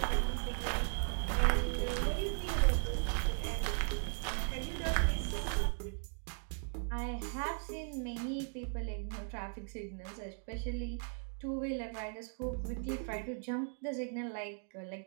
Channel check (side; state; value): left; silent; 53 dB below the other